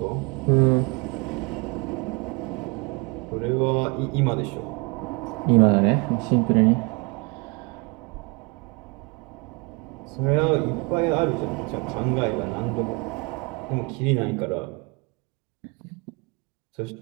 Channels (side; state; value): left; quieter; 30.1 dB